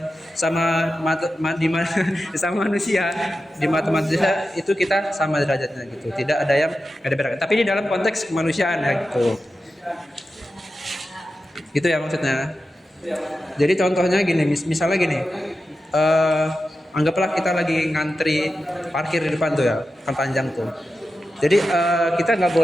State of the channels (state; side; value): normal; both; correlation 0.91